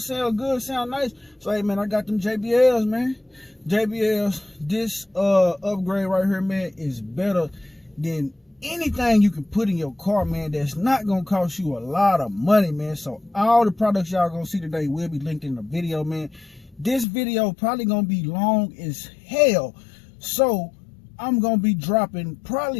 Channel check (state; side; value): drops out; right; at 17.1 s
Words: sound good, sound nice. So, hey, man, I got them JBLs, man. JBLs, this upgrade right here, man, is better than anything you can put in your car, man. That's not gonna cost you a lot of money, man. So all the products y'all gonna see today will be linked in the video, man. This video probably gonna be long as hell, so I'm gonna be dropping